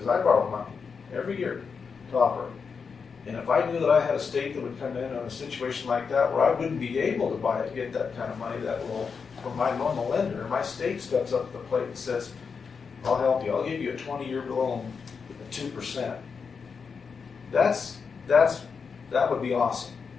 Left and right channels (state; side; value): quieter; right; 5.7 dB